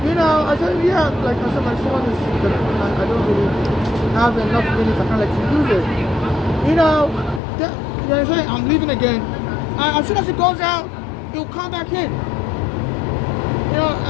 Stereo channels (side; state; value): right; drops out; at 7.4 s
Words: I said, yeah, like I said, my phone is, I don't really have enough minutes, I can't let you use it. They say, I'm leaving again. And as soon as it goes out, he'll come back in.